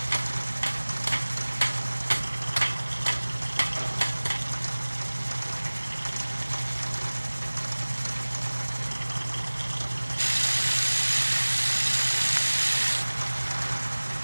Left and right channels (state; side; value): inverted; both; correlation -1.00